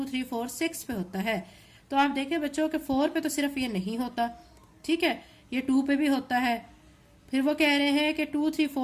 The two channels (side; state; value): both; identical; correlation 1.00